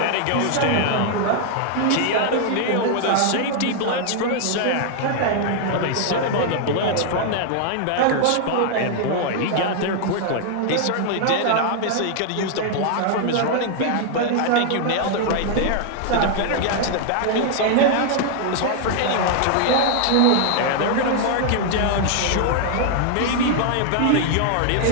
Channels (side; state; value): both; different; correlation 0.00